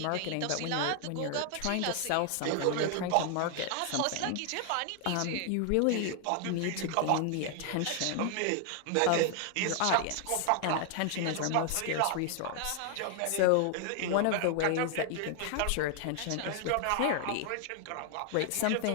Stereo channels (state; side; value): different; both; correlation 0.00